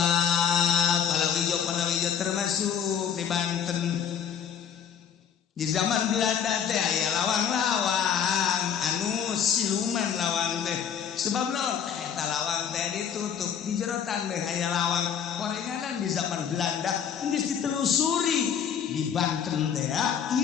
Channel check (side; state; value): right; quieter; 8.1 dB